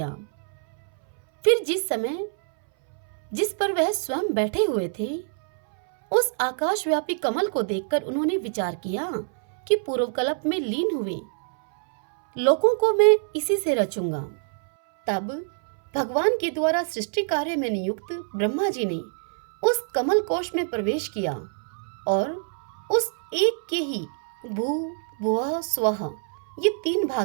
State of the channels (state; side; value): silent; left; 62 dB below the other